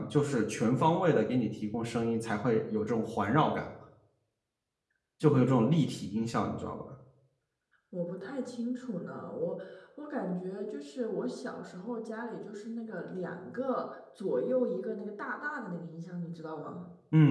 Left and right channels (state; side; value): identical; both; correlation 1.00